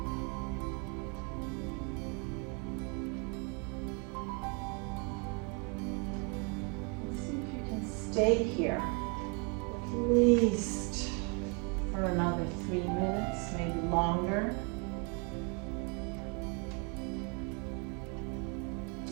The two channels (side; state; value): left; quieter; 34.7 dB